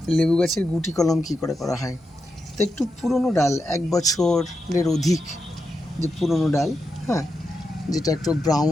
লেবু গাছের গুটি কলম কী করে করা হয়। তো একটু পুরনো ডাল, 1 বছরের অধিক যে পুরনো ডাল, হ্যাঁ, যেটা একটু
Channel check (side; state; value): both; normal; correlation 0.87